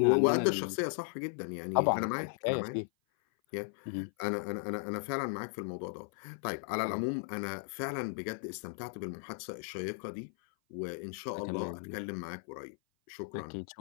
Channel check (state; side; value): silent; right; 54 dB below the other